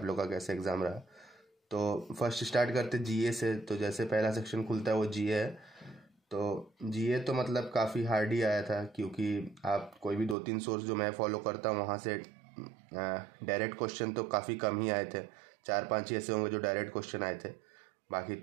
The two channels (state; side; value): drops out; left; at 10.4 s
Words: लोग का कैसा एग्ज़ाम रहा। तो फर्स्ट स्टार्ट करते जीए से। तो जैसे पहला सेक्शन खुलता है वो जीए है। तो जीए तो मतलब काफ़ी हार्ड ही आया था, क्योंकि आप कोई भी 2-3 सोर्स जो मैं फॉलो करता हूँ वहाँ से डायरेक्ट क्वेश्चन तो काफ़ी कम ही आए थे। 4-5 ही ऐसे होंगे जो डायरेक्ट क्वेश्चन आए थे। बाकी